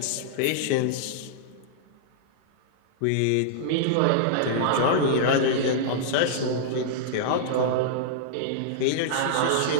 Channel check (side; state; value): both; different; correlation -0.02